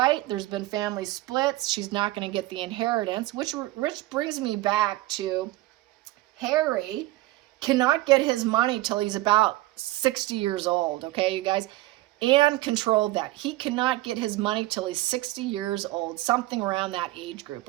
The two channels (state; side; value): quieter; left; 17.9 dB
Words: There's been family splits. She's not going to get the inheritance, which brings me back to Harry cannot get his money till he's about 60 years old, okay, you guys? Anne controlled that. He cannot get his money till he's 60 years old, something around that age group,